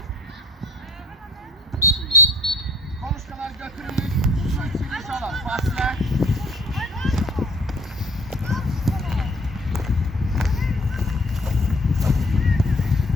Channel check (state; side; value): normal; both; correlation 0.52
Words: Konuşmalar götürülür. Su içilmiş olan fasile.